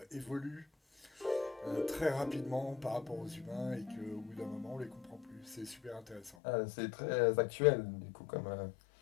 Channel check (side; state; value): right; drops out; at 6.4 s